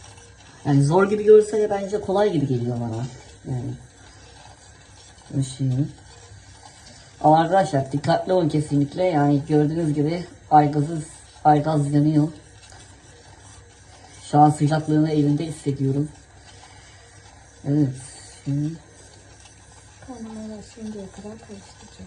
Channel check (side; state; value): both; identical; correlation 1.00